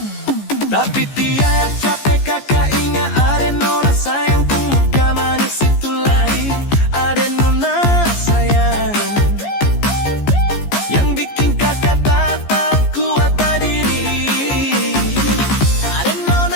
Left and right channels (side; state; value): right; late; 14 ms